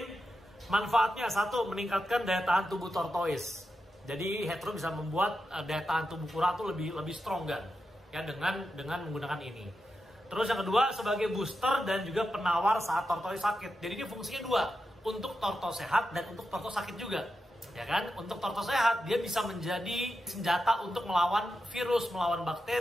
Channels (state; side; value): normal; both; correlation 0.89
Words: Manfaatnya satu, meningkatkan daya tahan tubuh tortoise. Jadi Hetero bisa membuat daya tahan tubuh kura itu lebih strong kan, ya dengan menggunakan ini. Terus yang kedua sebagai booster dan juga penawar saat tortoise sakit. Jadi ini fungsinya dua, untuk tortoise sehat dan untuk tortoise sakit juga, ya kan? Untuk tortoise sehat dia bisa menjadi senjata untuk melawan virus, melawan